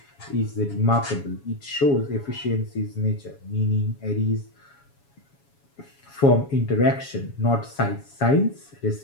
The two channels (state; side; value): late; right; 7.2 ms